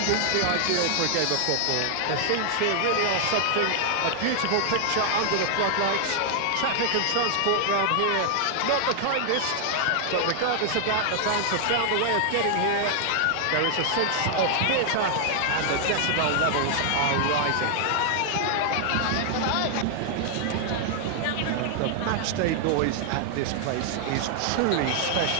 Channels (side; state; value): both; different; correlation 0.00